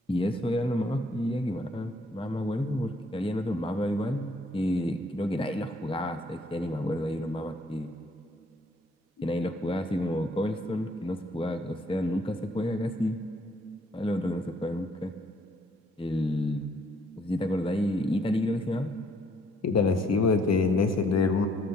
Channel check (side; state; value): both; normal; correlation 0.66